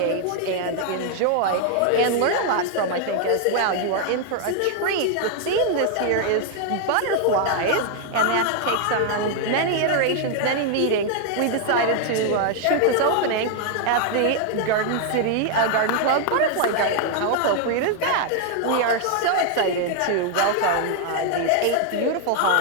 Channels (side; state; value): both; different; correlation 0.00